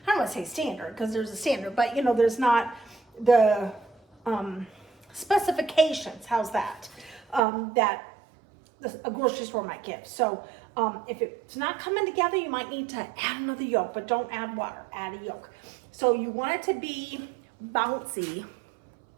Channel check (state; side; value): drops out; left; at 7.4 s